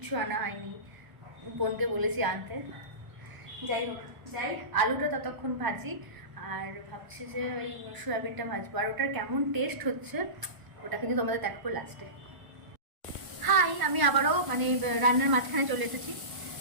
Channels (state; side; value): late; left; 1.0 ms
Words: আনা হয়নি। বোনকে বলেছি আনতে। যাই হোক, আলুটা ততক্ষণ ভাজি, আর ভাবছি যে ওই সয়াবিনটা ভাজবো। আর ওটার কেমন টেস্ট হচ্ছে ওটা কিন্তু তোমাদের দেখাবো লাস্টে। হাই, আমি আবারও মানে রান্নার মাঝখানে চলে এসেছি।